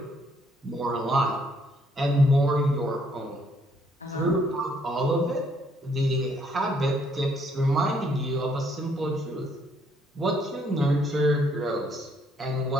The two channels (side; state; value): both; normal; correlation 0.68